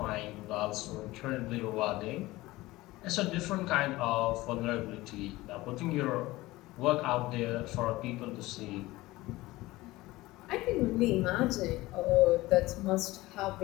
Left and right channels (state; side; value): quieter; right; 19.0 dB